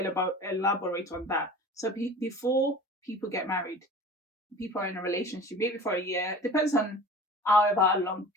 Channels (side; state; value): both; normal; correlation 0.40